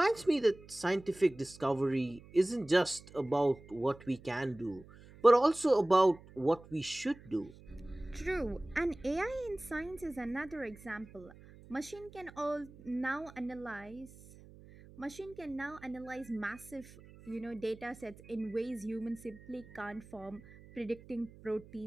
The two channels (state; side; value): noise; right; hum, 21 dB below the sound